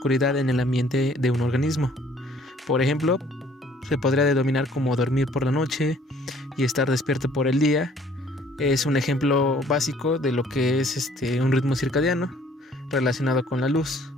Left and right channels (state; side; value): normal; both; correlation 0.58